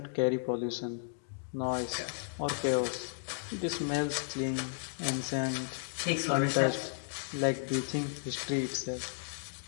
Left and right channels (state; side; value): silent; right; digital silence